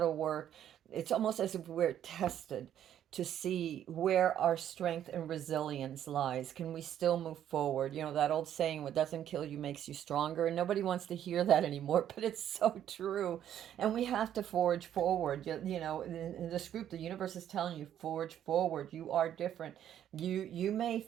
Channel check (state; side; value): quieter; left; 10.5 dB